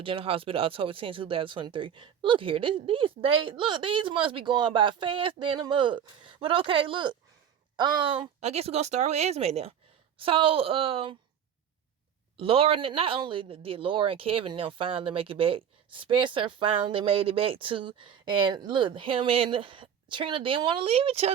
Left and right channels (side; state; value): left; quieter; 8.6 dB